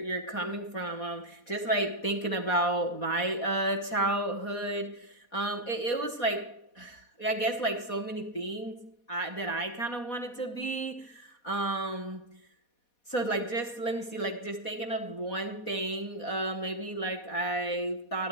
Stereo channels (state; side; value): late; right; 4.2 ms